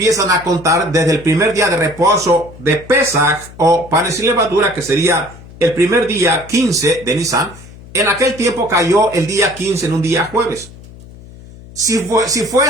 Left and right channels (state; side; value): noise; left; hum, 19 dB below the sound